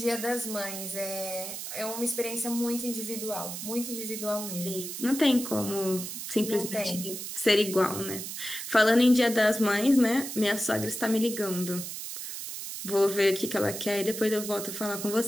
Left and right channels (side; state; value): right; noise; hiss, 7 dB below the sound